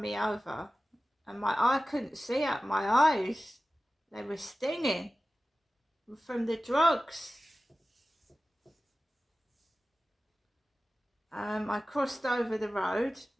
over. And I couldn't see out my eyes. They were stinging from the drugs. I crossed over the road,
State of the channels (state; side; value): normal; both; correlation 0.96